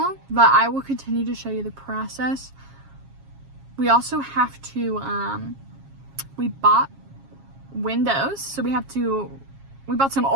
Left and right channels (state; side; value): late; left; 7.3 ms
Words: But I will continue to show you the process. We also have to, we bought windows, so we bought some